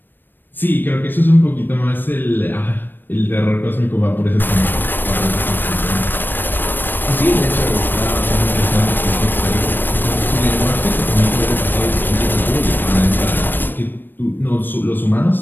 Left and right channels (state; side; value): late; right; 0.094 ms